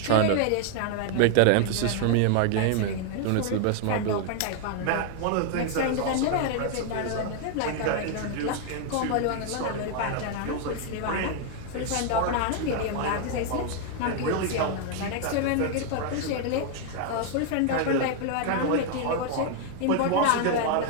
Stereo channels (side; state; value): both; different; correlation 0.00